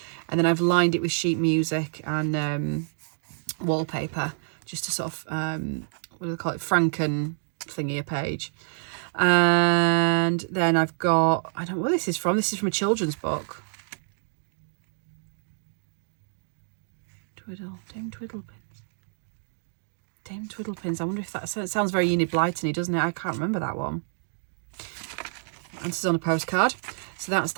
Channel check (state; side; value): silent; left; digital silence